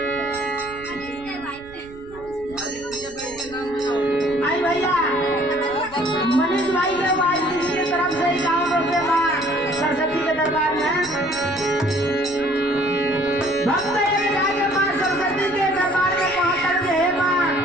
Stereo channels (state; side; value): noise; right; rumble, 20 dB below the sound